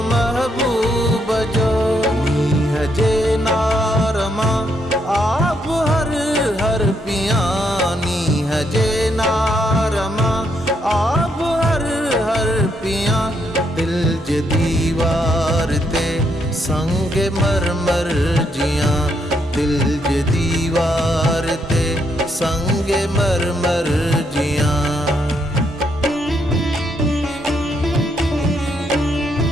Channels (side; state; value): both; normal; correlation 0.76